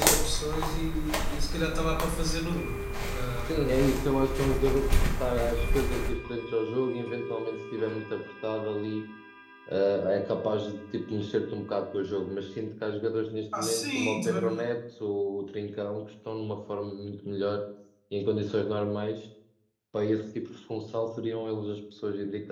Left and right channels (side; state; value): both; identical; correlation 1.00